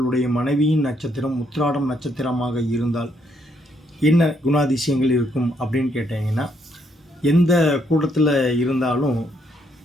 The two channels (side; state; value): both; normal; correlation 0.73